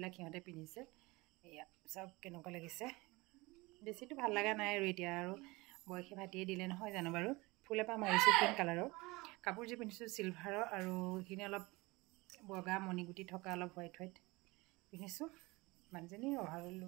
সিহঁতে পিন্ধিছে এয়া চব কেনেকুৱা লাগিছে বেছিটো ভাল লগা নাই আৰু এতিয়া আৰু বয়সে ভাতিয়ে দিলে নহয় জানো বাৰু ফুল এপাহ মাৰিছোঁ পিংক কালাৰৰ কাপোৰযোৰ পিন্ধিছোঁ চিলভাৰৰ আৰু এইখিনি অলপ বগা মণিগুটি থকা অলপ হোৱাইট পিন্ধিছোঁ মানুহজনী অভাৰৰ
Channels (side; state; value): left; quieter; 23.1 dB